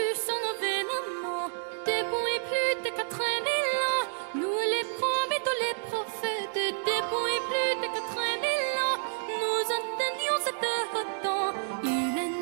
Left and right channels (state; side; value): silent; left; digital silence